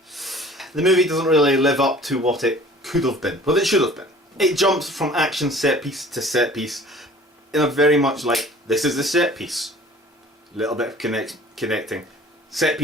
The movie doesn't really live up to what it could have been, what it should have been. It jumps from action set piece to set piece in a very much like, this is the set piece. A little bit of connecting. Set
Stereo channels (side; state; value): both; normal; correlation 0.48